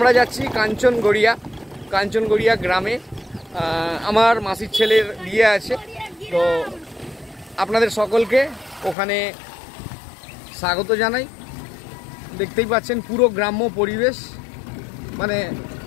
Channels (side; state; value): right; drops out; at 9.0 s